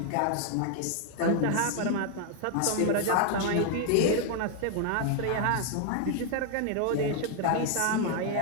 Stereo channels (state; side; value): different; both; correlation 0.00